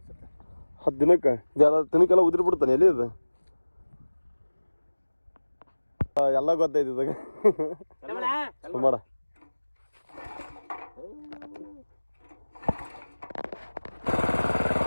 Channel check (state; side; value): inverted; both; correlation -1.00